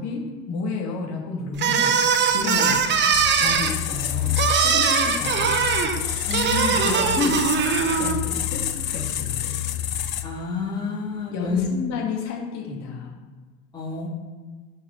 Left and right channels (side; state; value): both; normal; correlation 0.04